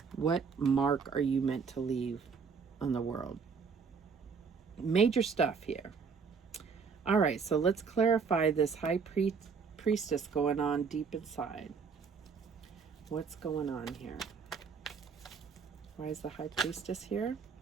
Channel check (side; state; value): left; quieter; 5.6 dB